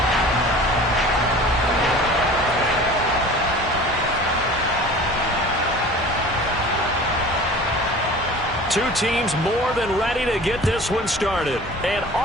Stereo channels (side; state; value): both; normal; correlation 0.42